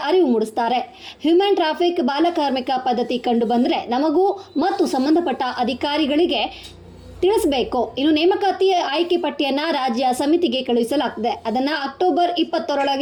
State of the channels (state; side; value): identical; both; correlation 1.00